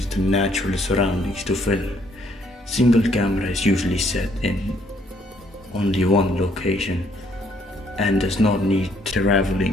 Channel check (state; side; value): normal; both; correlation 0.67